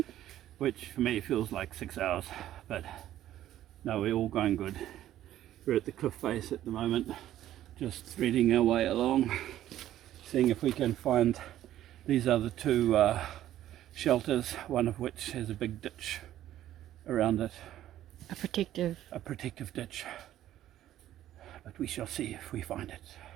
which for me feels like 6 hours, but no, we're all going good. We're at the cliff face at the moment, just threading our way along, seeing if we can find these other two shelters, one of which has a big ditch around it. A protective ditch, but we shall see if we find it.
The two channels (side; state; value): left; quieter; 12.7 dB